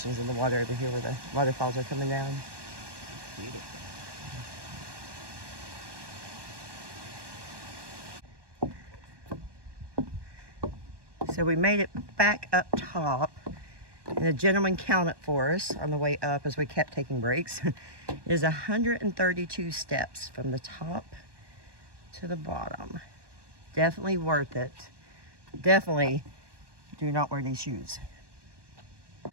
in the water over here where the waterfalls are coming down. It's beautiful. So we made it back up top, and the gentleman counted for us on the way up as we kept taking breaks. It is 132 steps from the top to the bottom. Definitely worth it. Definitely do not wear these shoes.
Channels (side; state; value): left; late; 1.2 ms